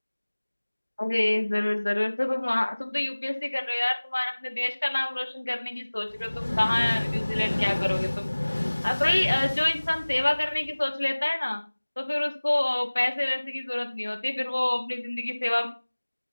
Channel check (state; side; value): inverted; both; correlation -1.00